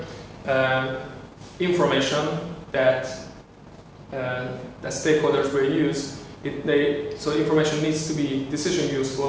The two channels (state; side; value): identical; both; correlation 1.00